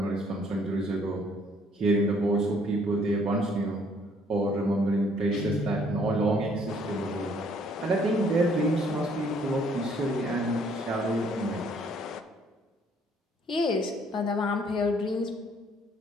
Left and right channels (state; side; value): normal; both; correlation 0.63